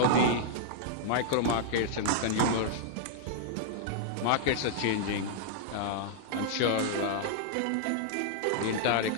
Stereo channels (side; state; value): both; different; correlation -0.01